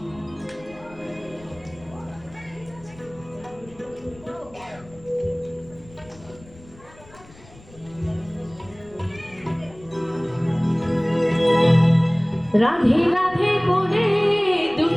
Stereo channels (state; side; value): noise; left; rumble, 23 dB below the sound